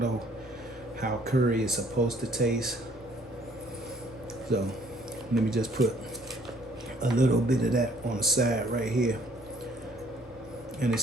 how curry is supposed to taste. So let me just put a little bit of that on the side right here. and it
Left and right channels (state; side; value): normal; both; correlation 0.60